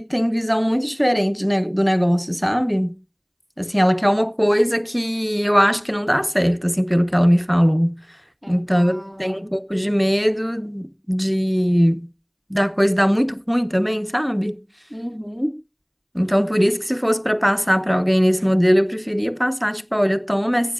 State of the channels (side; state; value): both; identical; correlation 1.00